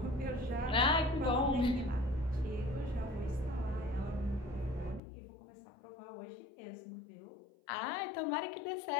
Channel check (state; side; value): drops out; right; at 5.0 s